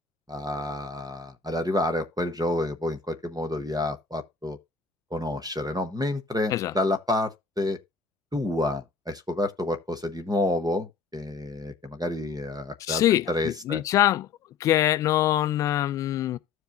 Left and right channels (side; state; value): right; quieter; 5.0 dB